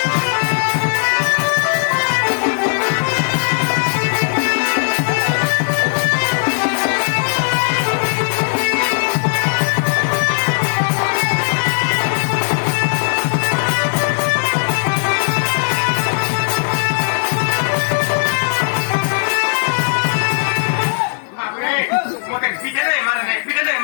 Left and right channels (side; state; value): right; silent; digital silence